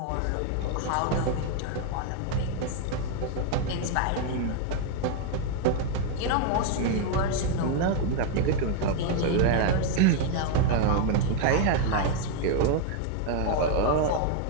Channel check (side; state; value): both; different; correlation 0.00